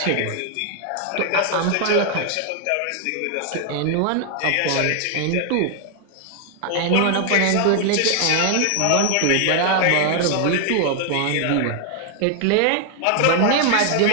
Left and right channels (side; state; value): both; different; correlation 0.00